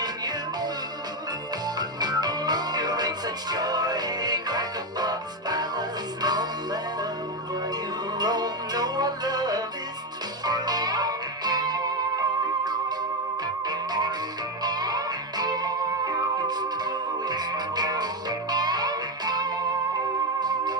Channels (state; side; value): normal; both; correlation 0.09